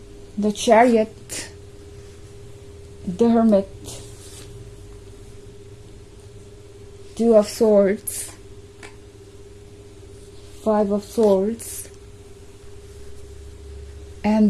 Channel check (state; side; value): identical; both; correlation 1.00